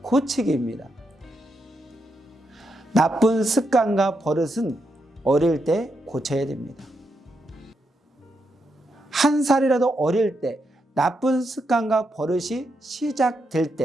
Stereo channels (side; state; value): both; normal; correlation 0.82